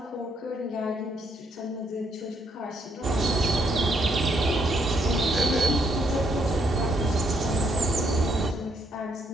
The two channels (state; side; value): normal; both; correlation 0.73